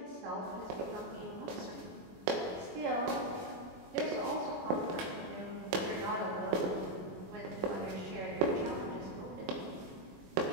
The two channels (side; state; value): left; late; 21 ms